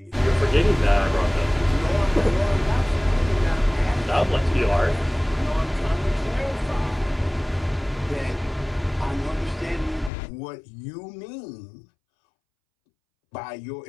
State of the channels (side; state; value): right; drops out; at 10.1 s